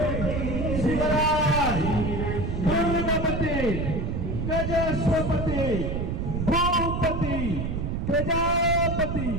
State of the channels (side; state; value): right; noise; rumble, 2 dB below the sound